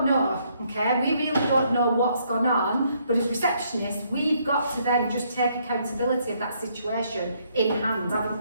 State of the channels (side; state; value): both; inverted; correlation -0.70